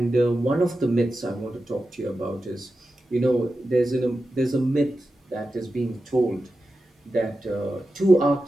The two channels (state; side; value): normal; both; correlation 0.92